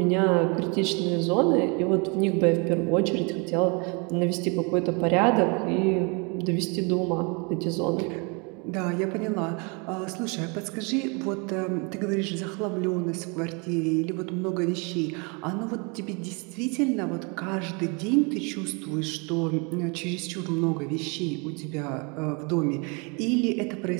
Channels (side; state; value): left; quieter; 32.3 dB